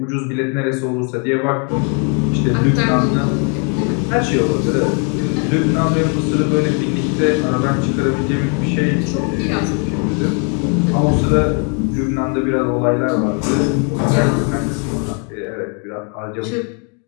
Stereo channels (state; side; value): quieter; right; 38.7 dB